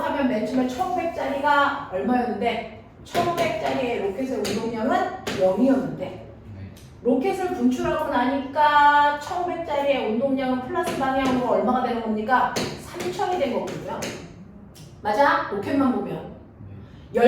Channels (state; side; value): identical; both; correlation 1.00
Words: 맨 처음에 1500짜리가 얼마였는데 1500짜리의 로켓의 운동량은 0이었는데 네. 로켓을 분출하고 나니까 1500짜리의 운동량은 플러스 방향으로 얼마가 되는 겁니까? 3000이 된 거거든요. 맞아? 로켓만 보면.